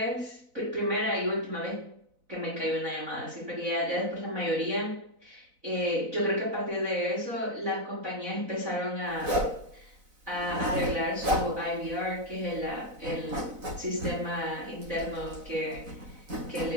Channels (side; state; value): left; late; 4.0 ms